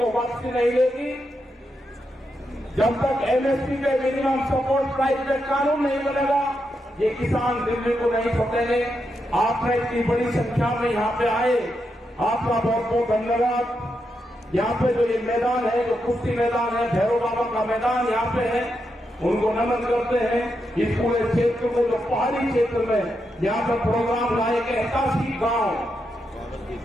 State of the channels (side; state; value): both; normal; correlation 0.84